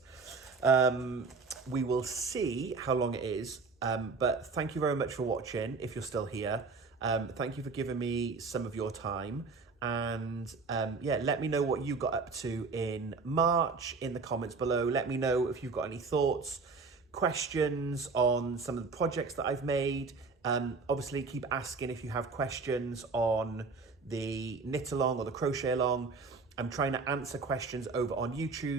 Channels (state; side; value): quieter; left; 4.4 dB